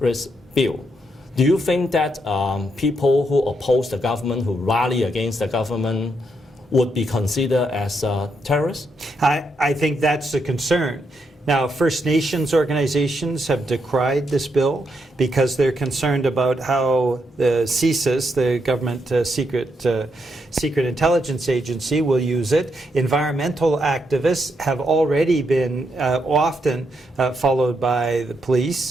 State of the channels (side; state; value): both; normal; correlation 0.79